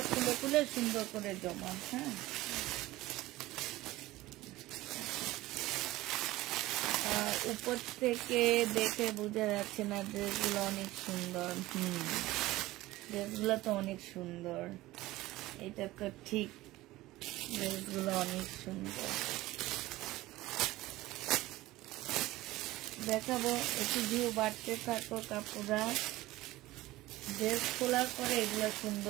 খুলে খুলে সুন্দর করে জমা হ্যাঁ আর উপর থেকে দেখে বোঝা যাচ্ছে না, ড্রেসগুলো অনেক সুন্দর। ড্রেসগুলো তো অনেক সুন্দর, এটা তো ঠিক, ড্রেসগুলো অনেক সুন্দর। দেখাবো, একটু ভিউ বাড়তে থাকো কাপড়া। ড্রেস খোলার পরে এগুলো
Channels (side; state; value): left; quieter; 17.8 dB